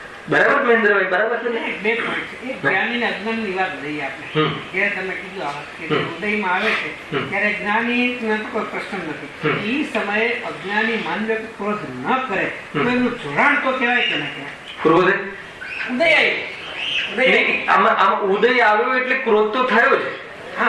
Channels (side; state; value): both; identical; correlation 1.00